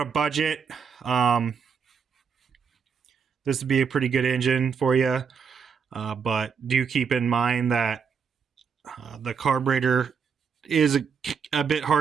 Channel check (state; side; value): quieter; left; 6.4 dB